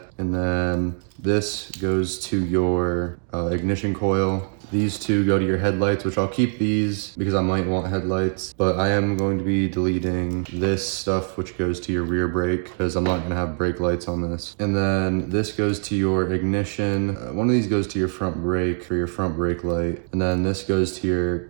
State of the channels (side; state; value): left; silent; 57 dB below the other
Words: And then this goes to your ignition coil. These two go to your headlights, which I'll keep these because I might want headlights, but I am going to be deleting this stuff, which goes to your rear brake, because I'm not gonna have brake lights on this. And then this goes to your ignition. One of these goes to your front brake for your front brake light. And then this goes to